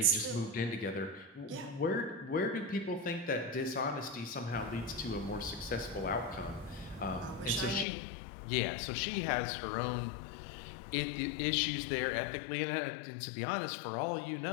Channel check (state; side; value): drops out; right; at 7.9 s